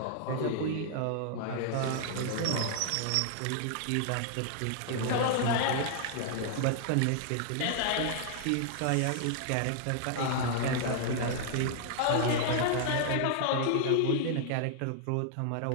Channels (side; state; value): both; different; correlation -0.01